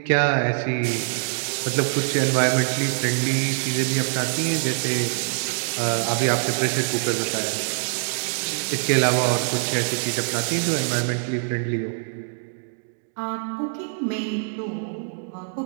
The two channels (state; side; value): silent; left; digital silence